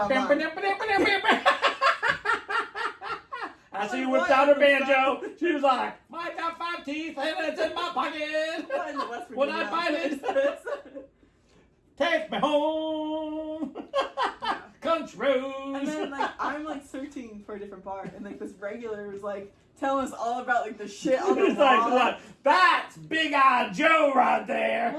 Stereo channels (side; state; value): both; identical; correlation 1.00